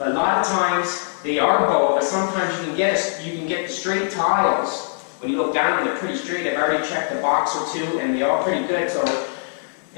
a lot of times they are bowed, but sometimes you can get the straight tiles. When you look down, they're pretty straight. I've already checked a box or two, and they're all pretty good. So,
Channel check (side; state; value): right; silent; 64 dB below the other